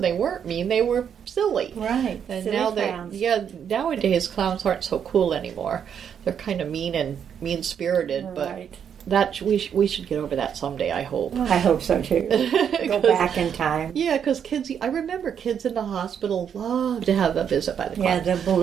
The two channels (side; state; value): left; quieter; 8.1 dB